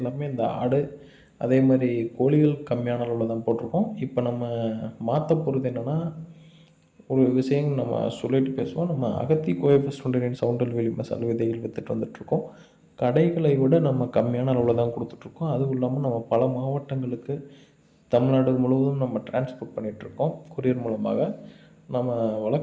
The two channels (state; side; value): identical; both; correlation 1.00